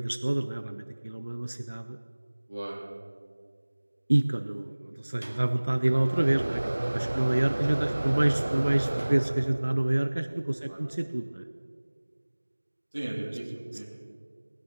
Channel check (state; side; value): inverted; both; correlation -1.00